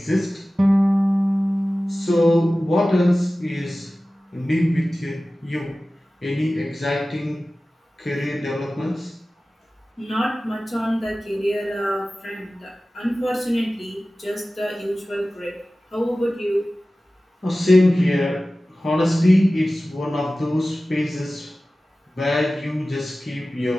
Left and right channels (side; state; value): both; normal; correlation 0.96